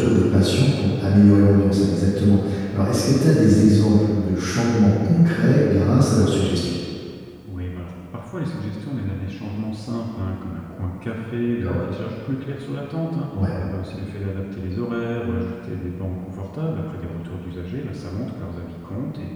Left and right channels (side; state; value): both; identical; correlation 1.00